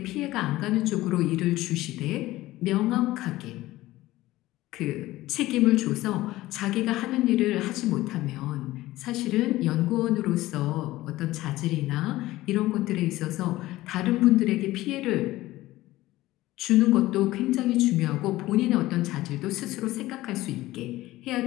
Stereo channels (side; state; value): right; quieter; 17.1 dB